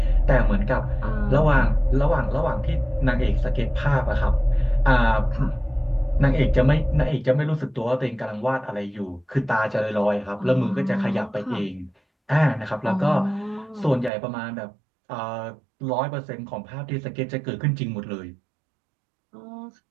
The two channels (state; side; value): drops out; left; at 14.1 s